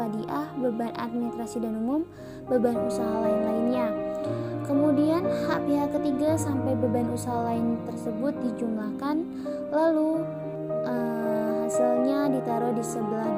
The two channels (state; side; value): identical; both; correlation 1.00